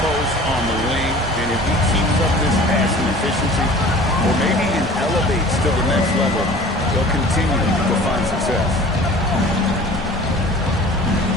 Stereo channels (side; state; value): both; normal; correlation 0.44